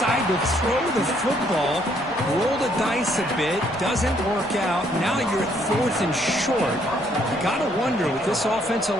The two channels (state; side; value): noise; left; rumble, 25 dB below the sound